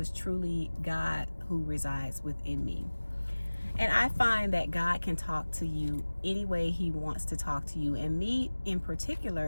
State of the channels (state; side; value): inverted; both; correlation -1.00